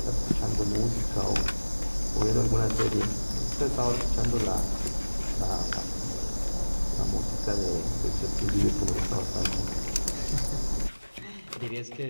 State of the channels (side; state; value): both; inverted; correlation -1.00